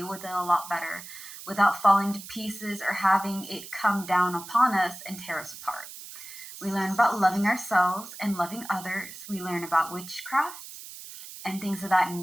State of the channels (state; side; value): noise; right; hiss, 13 dB below the sound